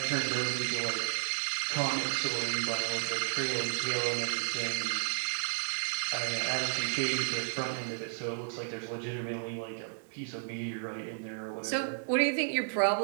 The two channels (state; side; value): silent; left; digital silence